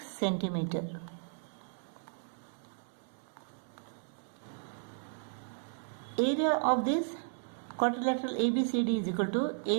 centimeter. Area of this quadrilateral ABCD is equal to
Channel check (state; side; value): silent; left; 55 dB below the other